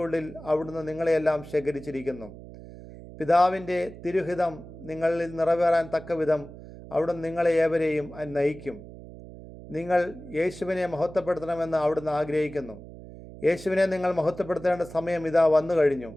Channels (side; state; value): right; noise; hum, 16 dB below the sound